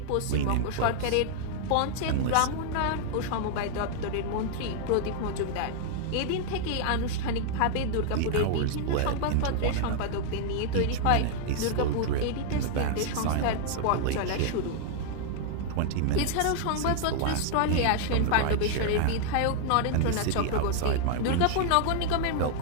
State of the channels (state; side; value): different; both; correlation 0.00